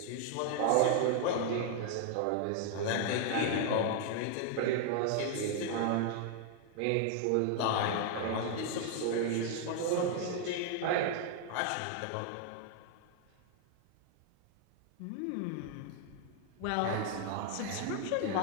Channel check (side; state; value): both; different; correlation 0.00